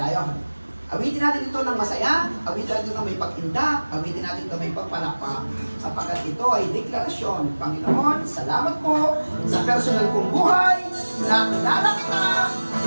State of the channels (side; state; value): both; inverted; correlation -1.00